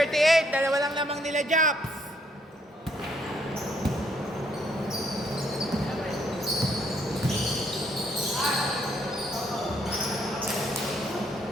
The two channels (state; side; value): normal; both; correlation 0.70